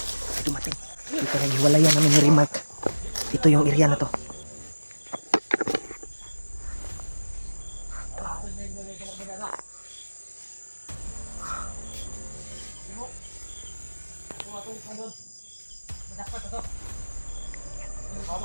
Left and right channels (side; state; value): both; inverted; correlation -1.00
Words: Ay dumating. Ito na hiwalayan namin ni Remark. Ito yung area na to.